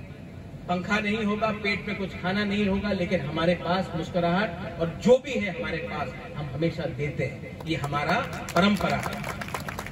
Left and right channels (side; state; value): both; identical; correlation 1.00